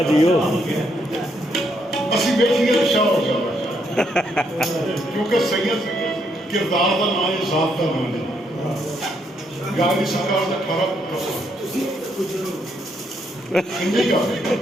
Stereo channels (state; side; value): normal; both; correlation 0.75